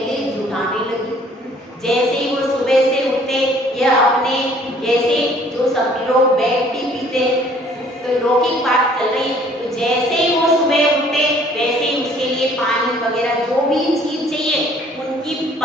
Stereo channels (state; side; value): normal; both; correlation 0.57